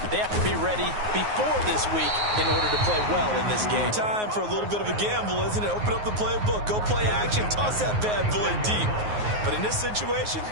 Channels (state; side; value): late; left; 9.5 ms